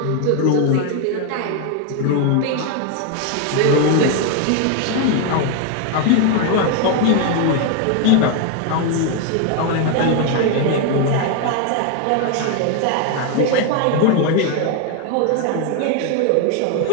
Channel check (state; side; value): different; both; correlation 0.01